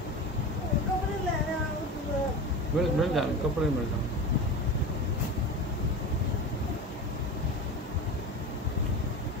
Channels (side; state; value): both; normal; correlation 0.27